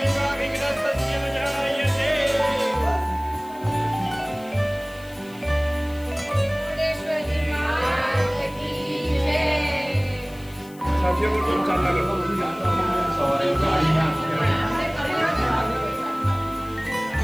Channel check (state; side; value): noise; left; hiss, 23 dB below the sound